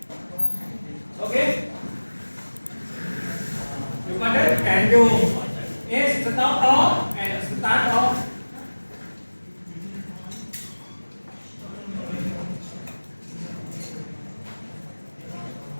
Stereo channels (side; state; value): both; inverted; correlation -1.00